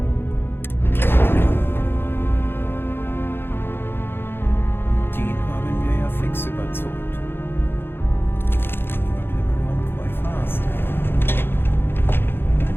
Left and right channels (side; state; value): right; late; 0.10 ms